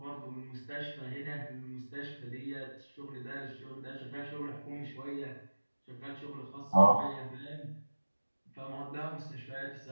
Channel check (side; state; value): both; inverted; correlation -1.00